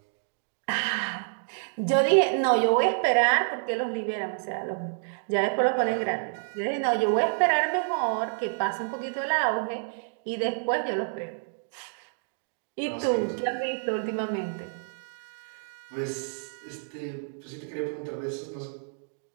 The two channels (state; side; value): silent; left; digital silence